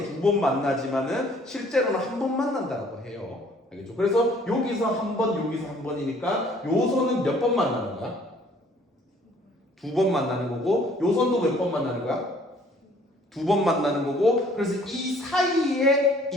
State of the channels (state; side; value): normal; both; correlation 0.58